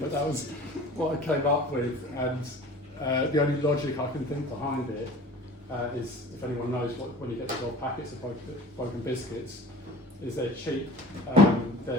that was what I came up with. And the only logic I can think behind it is, if anyone knows when you get the old packets of Broken Biscuits, is they're cheap.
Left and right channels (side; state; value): both; normal; correlation 0.43